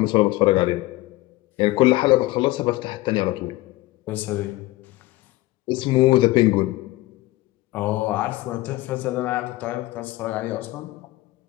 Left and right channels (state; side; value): quieter; right; 18.9 dB